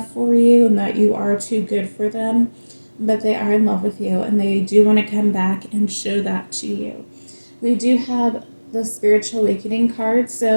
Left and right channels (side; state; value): both; inverted; correlation -1.00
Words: for you and that you are too good for them, but they are in love with you and they do want to come back and show that to you. We do have the spiritual awakening card,